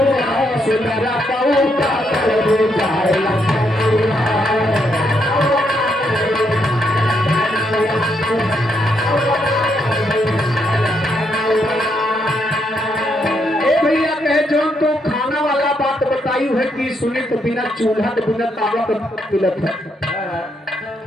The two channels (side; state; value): both; normal; correlation 0.77